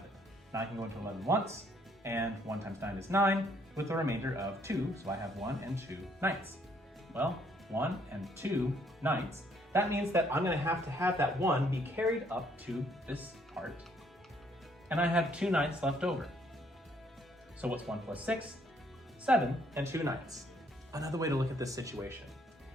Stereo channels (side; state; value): both; normal; correlation 0.67